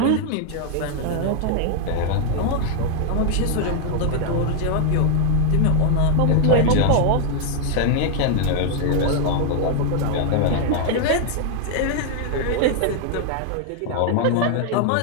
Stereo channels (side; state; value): both; different; correlation 0.00